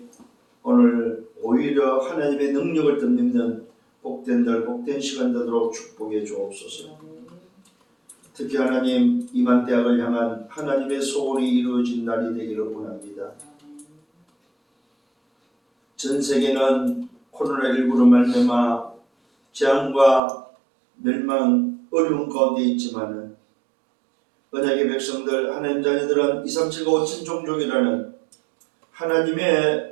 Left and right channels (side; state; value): left; drops out; at 20.2 s